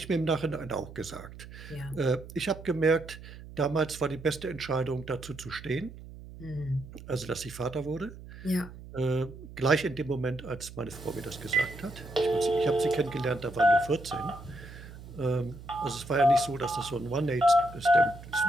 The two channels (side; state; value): right; noise; hum, 15 dB below the sound